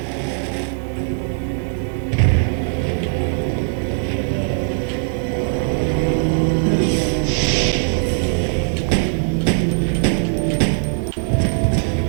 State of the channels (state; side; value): silent; left; 66 dB below the other